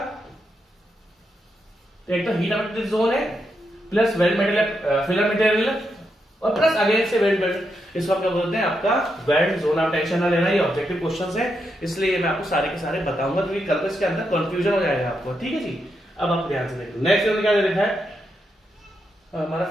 एक तो हीट अवेलेबिलिटी जोन है, plus weld metal filler material, और प्लस अगेन से वेल्ड मेटल, इसको हम क्या बोलते हैं? आपका वेल्ड जोन। आप टेंशन ना लेना, ये ऑब्जेक्टिव क्वेश्चंस है, इसलिए मैं आपको सारे के सारे बताऊंगा, क्योंकि कल को इसके अंदर कंफ्यूजन हो जाएगा आपको, ठीक है जी। अब आप ध्यान से देखो, नेक्स्ट जोन क्या दे रखा है हमारा?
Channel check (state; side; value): normal; both; correlation 0.83